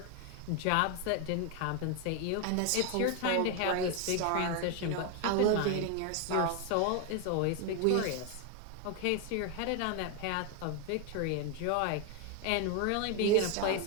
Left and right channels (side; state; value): both; different; correlation 0.01